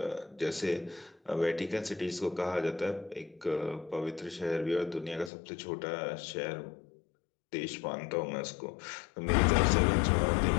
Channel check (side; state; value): right; drops out; at 5.3 s